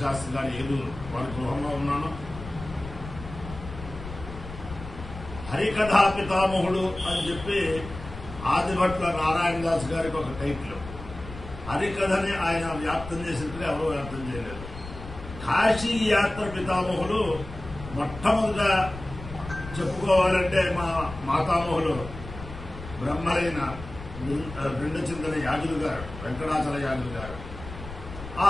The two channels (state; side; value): noise; left; rumble, 12 dB below the sound